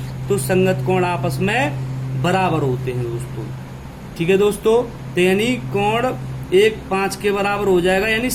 तो संगत कोण आपस में बराबर होते हैं दोस्तों। ठीक है दोस्तों। तो यानी कोण 1 5 के बराबर हो जाएगा, यानी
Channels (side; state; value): both; identical; correlation 1.00